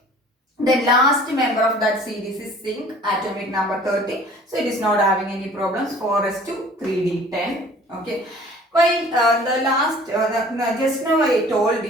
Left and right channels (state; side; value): normal; both; correlation 0.49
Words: The last member of that series is zinc, atomic number 30. So it is not having any problems. 4s2 3d10. Okay. While the last, just now I told